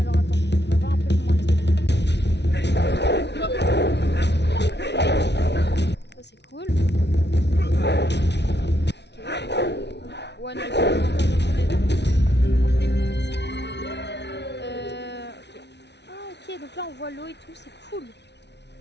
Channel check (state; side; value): late; right; 0.50 ms